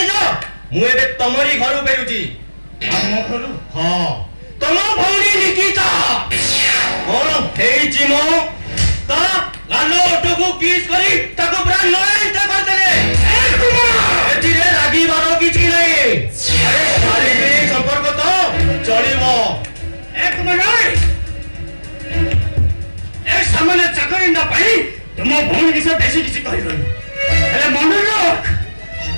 ମୁଁ ଏବେ ତମରି ଘରୁ ଫେରୁଛି। ଆମ ଘରୁ? ହଁ, ତମ ଭଉଣୀ ନିକିତା କଣ ହେଇଛି ମୋ? ତା ଗାଲ ଓଠକୁ କିସ୍ କରି ତାକୁ ପୁରା ନୟନ୍ତ କରିଦେଲେ। ଏଥିରେ ରାଗିବାର କିଛି ନାହିଁ। ଆରେ ଶାରୀରିକ ସମ୍ପର୍କ ତ ଚଳିବ। ଏକ ମିନିଟ୍, ଏ ସାମାନ୍ୟ ଚାକରିଟା ପାଇଁ ତୁମ ଭଉଣୀ ବିଷୟ ବେଶୀ କିଛି କହିବନି। ହେଲେ ମନେ ରଖ,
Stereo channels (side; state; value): both; inverted; correlation -1.00